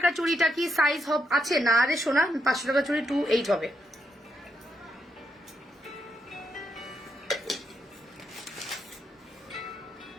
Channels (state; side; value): normal; both; correlation 0.79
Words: চুড়িটা কি সাইজ আছে? না রে সোনা, 500 টাকা চুড়ি 2.8 হবে।